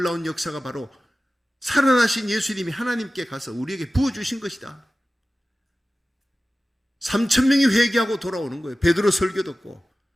역사가 바로 살아나신 예수님이 하나님께 가서 우리에게 부어주신 것이다. 3,000명이 회개하고 돌아오는 거예요. 베드로 설교 듣고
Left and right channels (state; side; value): normal; both; correlation 0.95